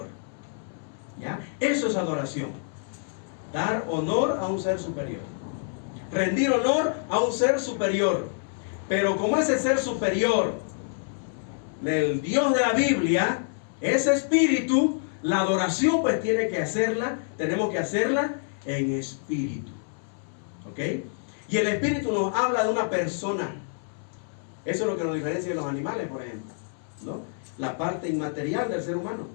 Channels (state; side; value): silent; right; 60 dB below the other